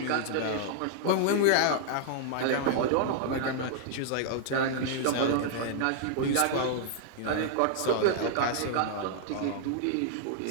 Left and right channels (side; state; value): both; different; correlation -0.01